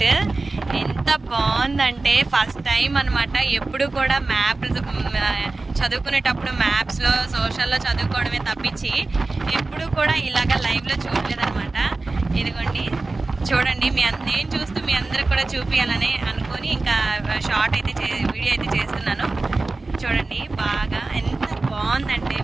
ఎంత బాగుందంటే ఫస్ట్ టైం అనమాట. ఎప్పుడు కూడా మ్యాప్స్ చదువుకునేటప్పుడు మ్యాప్స్లో సోషల్లో చదువుకోవడమే తప్పించి ఎప్పుడు కూడా ఇలాగ లైవ్లో చూడలేదన్నమాట. ఇదిగోండి చూడండి, నేను చూస్తూ మీ అందరికి కూడా చూపించాలని అనుకొని ఇంకా షార్ట్ అయితే వీడియో అయితే చేస్తున్నాను. చూడండి బాగా ఎంత బాగుందంటే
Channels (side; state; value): left; quieter; 3.4 dB